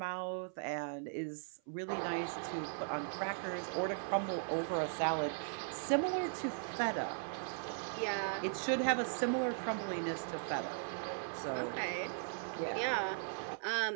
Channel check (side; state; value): left; silent; 52 dB below the other